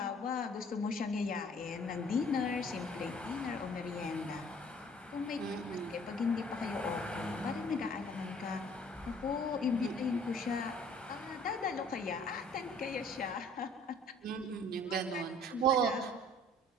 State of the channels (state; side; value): normal; both; correlation 0.54